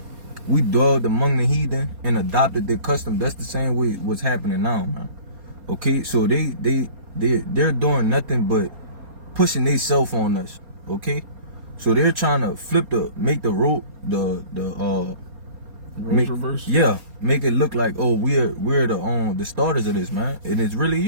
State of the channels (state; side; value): late; left; 4.3 ms